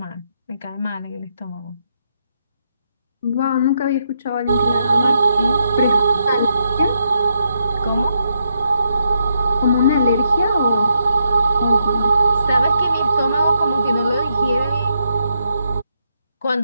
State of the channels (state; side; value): inverted; both; correlation -0.80